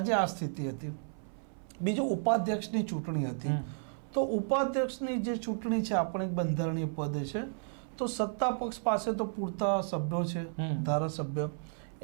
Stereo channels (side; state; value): left; silent; 56 dB below the other